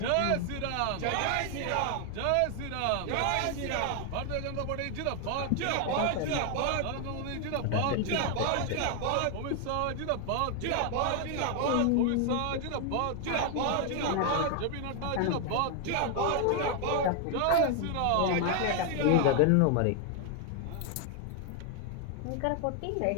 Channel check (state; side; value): different; both; correlation 0.00